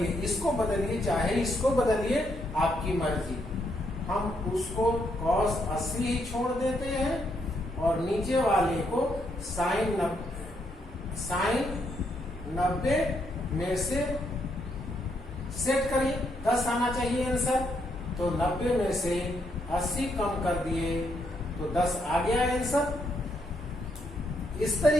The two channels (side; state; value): both; normal; correlation 0.76